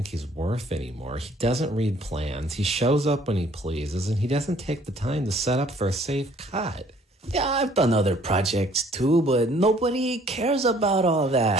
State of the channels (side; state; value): both; normal; correlation 0.59